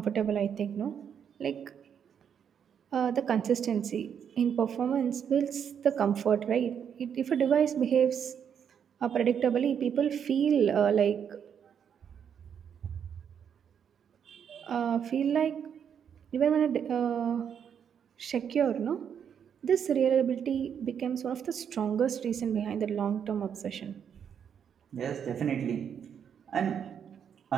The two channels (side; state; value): left; quieter; 8.0 dB